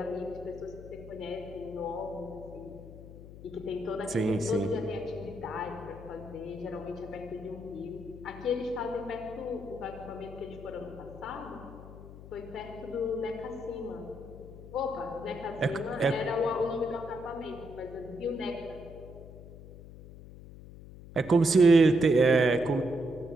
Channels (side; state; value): left; noise; hum, 15 dB below the sound